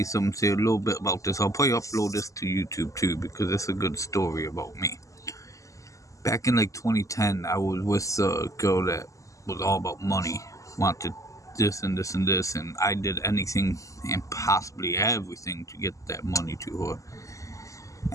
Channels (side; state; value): right; late; 0.16 ms